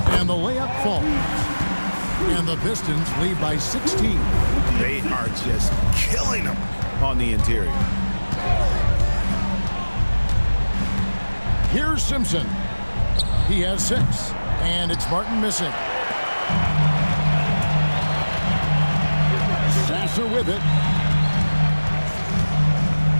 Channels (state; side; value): inverted; both; correlation -1.00